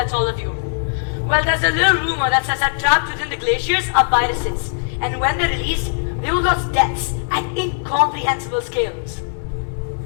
all of you, well, there's a little rumor that says that trapped within the glaciers are viruses, and when they're released, they will cause deaths at incomprehensible scales.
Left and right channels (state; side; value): silent; right; digital silence